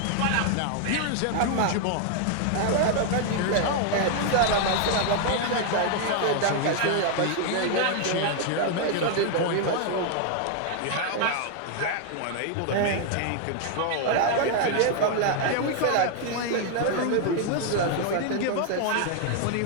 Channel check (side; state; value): both; different; correlation 0.00